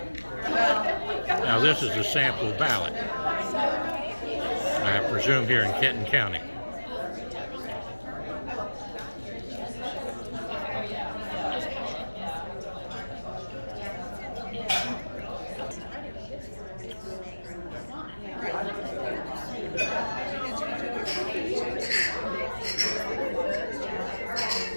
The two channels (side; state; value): both; inverted; correlation -1.00